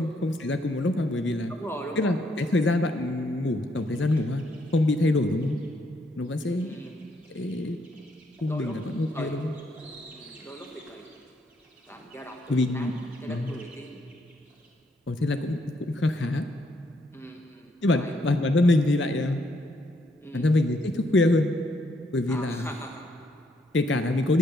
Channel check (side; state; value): both; normal; correlation 0.73